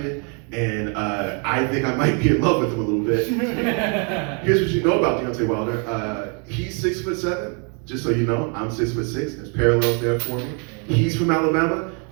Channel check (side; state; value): left; quieter; 37.5 dB